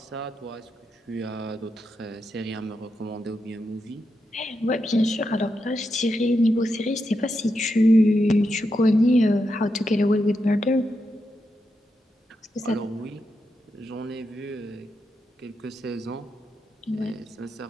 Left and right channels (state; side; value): normal; both; correlation 0.85